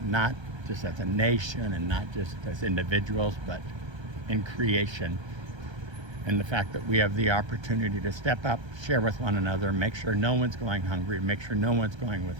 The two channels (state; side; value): late; left; 1.3 ms